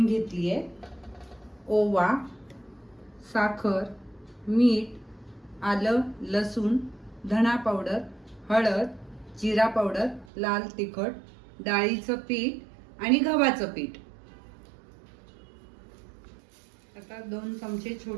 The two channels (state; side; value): drops out; left; at 10.2 s